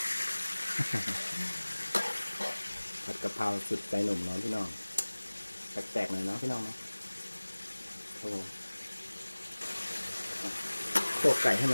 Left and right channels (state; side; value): inverted; both; correlation -1.00